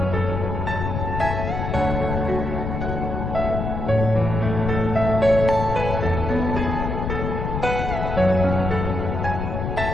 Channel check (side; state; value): left; noise; rumble, 3 dB below the sound